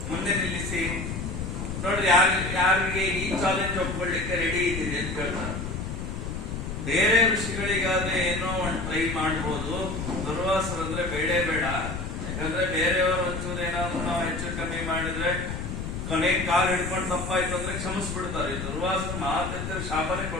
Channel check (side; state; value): left; noise; rumble, 5 dB below the sound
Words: ಮುಂದೆ ನಿಲ್ಲಿಸಿ ನೋಡ್ರಿ, ಯಾರಿಗೆ ಈ ಚಾಲೆಂಜ್ ಒಪ್ಕೊಳ್ಳಿಕ್ಕೆ ರೆಡಿ ಇದ್ದೀರಿ ಅಂತ ಕೇಳ್ತಾರೆ. ಬೇರೆ ಋಷಿಗಳಿಗಾದ್ರೆ ಏನೋ ಒಂದು ಟ್ರೈ ಮಾಡ್ಬೋದು, ದುರ್ವಾಸರಂದ್ರೆ ಬೇಡೇ ಬೇಡ. ಯಾಕಂದ್ರೆ ಬೇರೆಯವರು ಒಂಚೂರು ಏನಾದ್ರು ನಾವು ಹೆಚ್ಚು ಕಮ್ಮಿ ಮಾಡಿದ್ರೆ ಕೊನೆಗೆ ಕಾಲು ಹಿಡ್ಕೊಂಡು ತಪ್ಪಾಯ್ತು ಅಂದ್ರೆ ಕ್ಷಮಿಸ್ಬಿಡ್ತಾರೆ. ದುರ್ವಾಸರು ಮಾತ್ರ ಶಾಪನೇ